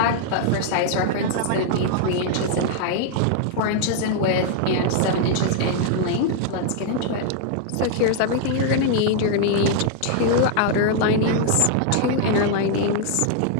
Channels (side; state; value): both; different; correlation 0.00